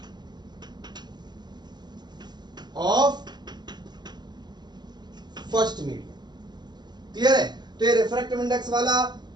of first medium. Clear है? तो ये रिफ्रैक्टिव इंडेक्स वाला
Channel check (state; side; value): late; left; 0.21 ms